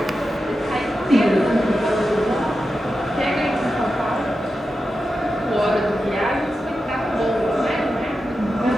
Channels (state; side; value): normal; both; correlation 0.90